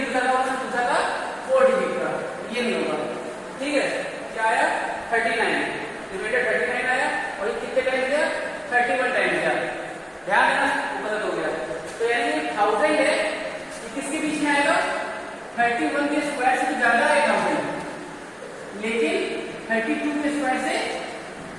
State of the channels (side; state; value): both; identical; correlation 1.00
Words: का पूछा था 4 डिजिट का, ये नहीं होगा। ठीक है, क्या आया? 39, रिमाइंडर 39 आया, और ये कितने टाइम दिया? 31 टाइम दिया। ध्यान देना, वो गलत हो गया। तो यानी 1000 है, ये किसके बीच में आएगा? 31 के स्क्वायर से ज्यादा है 1000, लेकिन 32 के स्क्वायर से